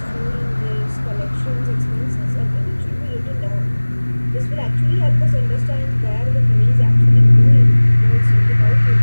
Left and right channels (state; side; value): inverted; both; correlation -1.00